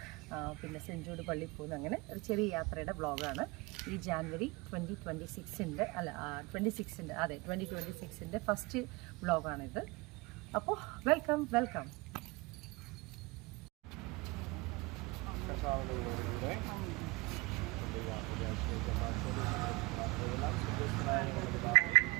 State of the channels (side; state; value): left; quieter; 24.3 dB